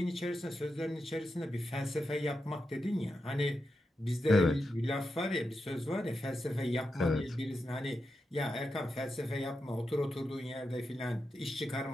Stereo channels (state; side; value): normal; both; correlation 0.88